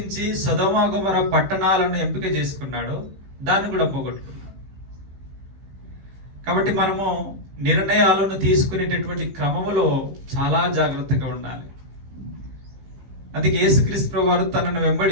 సొదొమ గొమొర్రా పట్టణాలను ఎంపిక చేసుకున్నాడో దాన్ని కూడా పోగొట్టుకున్నాడు. కాబట్టి మనము నిర్ణయాలను తీసుకునేటటువంటి క్రమములో చాలా జాగ్రత్తగా ఉండాలి. అందుకే యేసుక్రీస్తు ప్రభువు వారు తనను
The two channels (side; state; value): left; late; 15 ms